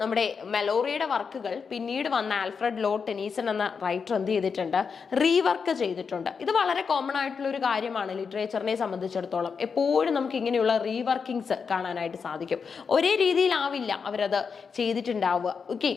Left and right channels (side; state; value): right; quieter; 5.8 dB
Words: നമ്മുടെ മെലോറിയുടെ വർക്കുകൾ പിന്നീട് വന്ന ആൽഫ്രഡ് ലോർഡ് ടെനീസൺ എന്ന റൈറ്റർ എന്ത് ചെയ്തിട്ടുണ്ട്? റീവർക്ക് ചെയ്തിട്ടുണ്ട്. ഇത് വളരെ കോമൺ ആയിട്ടുള്ള ഒരു കാര്യമാണ് ലിറ്ററേച്ചറിനെ സംബന്ധിച്ചിടത്തോളം. എപ്പോഴും നമുക്ക് ഇങ്ങനെയുള്ള റീവർക്കിങ്സ് കാണാനായിട്ട് സാധിക്കും. ഒരേ രീതിയിലാവില്ല അവരത് ചെയ്തിട്ടുണ്ടാവുക. ഓക്കെ,